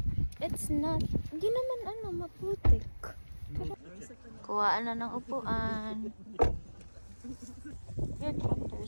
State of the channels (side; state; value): both; inverted; correlation -1.00